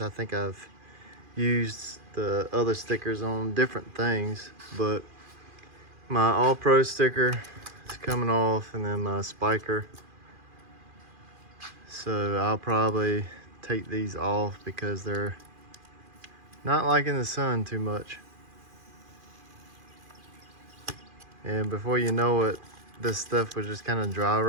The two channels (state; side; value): late; left; 2.4 ms